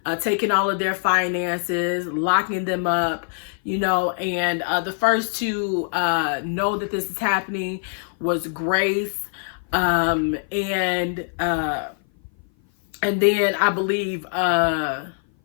taking all of their finances, locking them up, you know. And the first to know that this is happening was Grace, and then I believe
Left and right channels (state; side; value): silent; right; 57 dB below the other